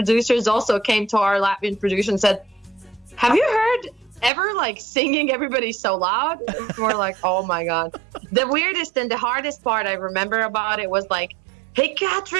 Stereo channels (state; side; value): drops out; left; at 4.3 s